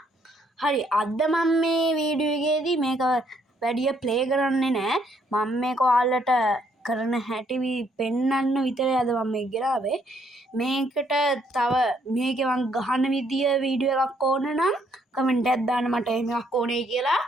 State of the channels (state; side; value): normal; both; correlation 0.69